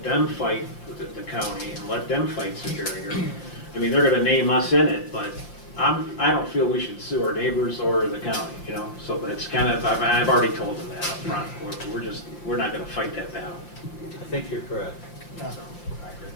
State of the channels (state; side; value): late; right; 5.8 ms